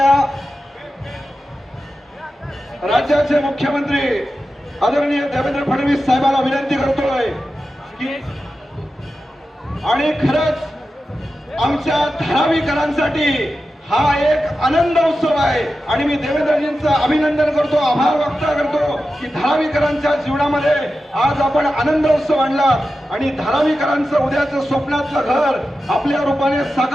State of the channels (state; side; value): normal; both; correlation 0.92